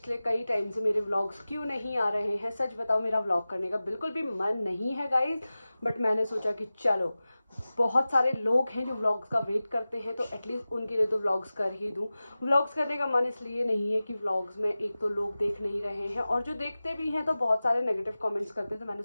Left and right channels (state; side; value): inverted; both; correlation -0.96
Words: कई टाइम से मेरे व्लॉग्स क्यों नहीं आ रहे हैं। सच बताओ, मेरा व्लॉग करने का बिल्कुल भी मन नहीं है गाइस, बट मैंने सोचा कि चलो, बहुत सारे लोग हैं जो व्लॉग्स का वेट करते हैं, तो एटलीस्ट उनके लिए तो व्लॉग्स कर ही दूँ। व्लॉग्स करने का मन इसलिए नहीं है कि व्लॉग्स में एक तो लोग देख नहीं रहे हैं, और जो देखते भी हैं तो बहुत सारे नेगेटिव कमेंट्स करते हैं, तो मैंने